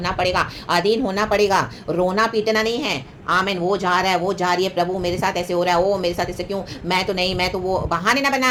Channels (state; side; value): identical; both; correlation 1.00